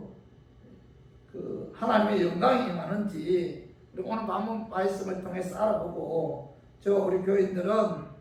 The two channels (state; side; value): identical; both; correlation 1.00